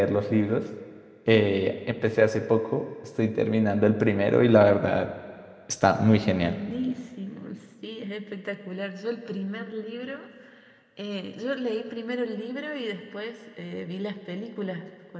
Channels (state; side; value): identical; both; correlation 1.00